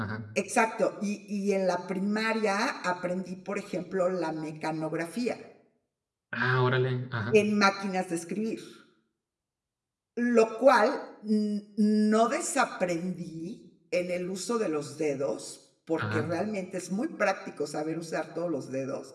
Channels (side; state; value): both; identical; correlation 1.00